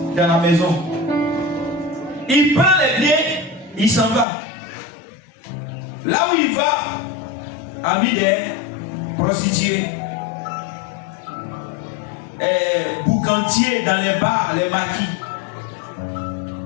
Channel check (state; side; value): drops out; right; at 4.2 s